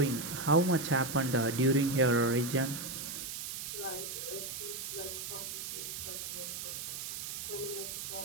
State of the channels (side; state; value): right; noise; hiss, 6 dB below the sound